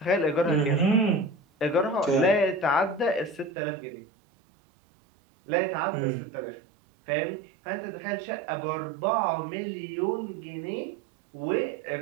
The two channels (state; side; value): drops out; left; at 3.5 s